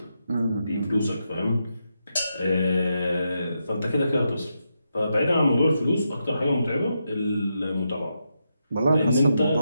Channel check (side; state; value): both; inverted; correlation -0.84